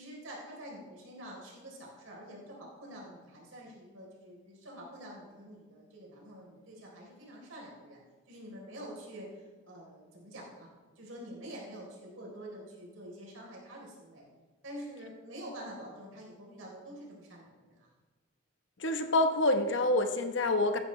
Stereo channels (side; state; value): both; normal; correlation -0.15